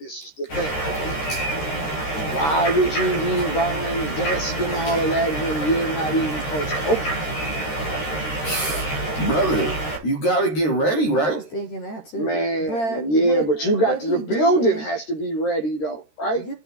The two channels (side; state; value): right; late; 13 ms